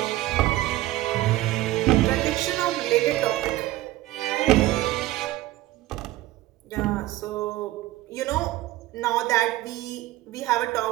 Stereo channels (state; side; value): quieter; left; 16.6 dB